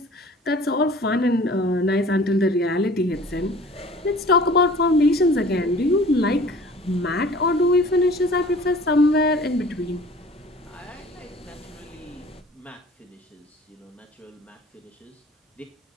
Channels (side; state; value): both; normal; correlation 0.47